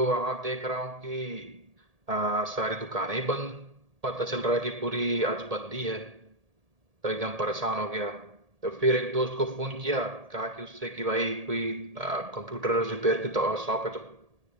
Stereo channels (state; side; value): late; left; 1.8 ms